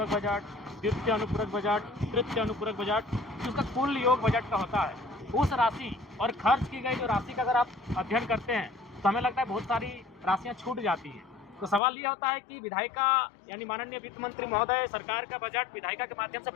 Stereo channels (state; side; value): drops out; right; at 11.8 s